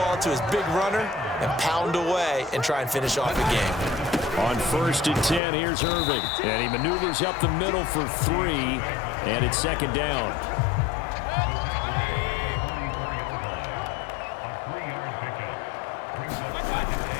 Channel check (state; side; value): drops out; right; at 5.4 s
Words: to his big runner and pound away and try and finish off the game. On 1st and 10, here's Irving. And he maneuvers up the middle for 3, and it's 2nd down.